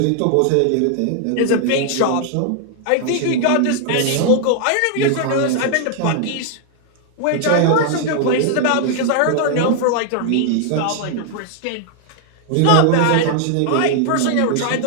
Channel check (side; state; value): both; different; correlation 0.00